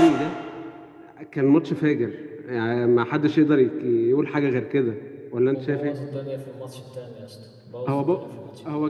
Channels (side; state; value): both; identical; correlation 1.00